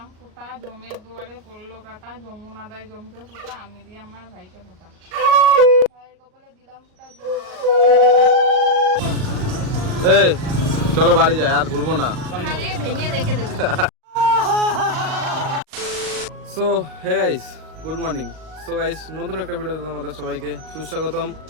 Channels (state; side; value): late; left; 38 ms